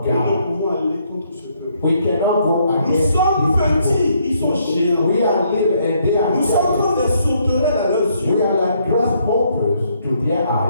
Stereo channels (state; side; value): inverted; both; correlation -0.71